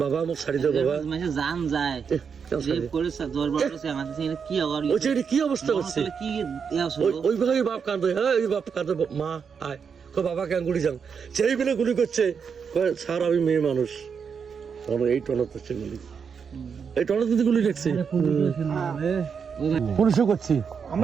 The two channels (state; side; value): quieter; left; 6.4 dB